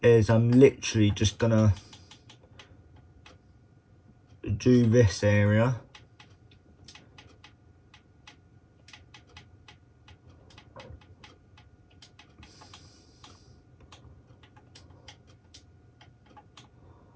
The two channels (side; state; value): both; identical; correlation 1.00